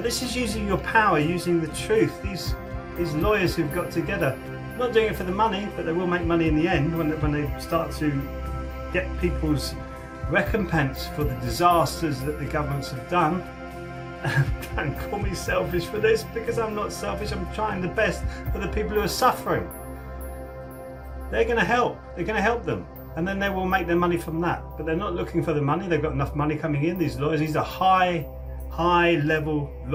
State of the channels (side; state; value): both; identical; correlation 1.00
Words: this is using your power, using the truth. These lawyers who've got together, not doing it for the money, but they will make money in the end when they start to get people's recompense for the disasters that the governments have done. Don't call me selfish for this, because I'm not selfish. I'm trying the best for the people who are suffering. They're going to help. They're going to help them, and then they will make their money from that. But they're not looking for the money. They've got enough money coming in. These lawyers, these are high level